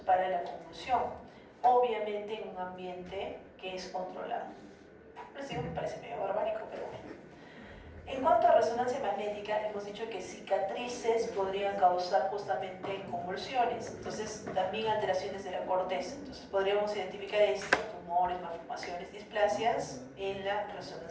para la convulsión, obviamente en un ambiente que es controlado. Les digo, me parece medio barbárico, pero bueno. En cuanto a resonancia magnética, hemos dicho que cicatrices podrían causar justamente convulsiones, entonces también alteraciones de la corteza. Entonces podríamos identificar esto, tumores, malformaciones, displasias en la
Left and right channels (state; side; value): identical; both; correlation 1.00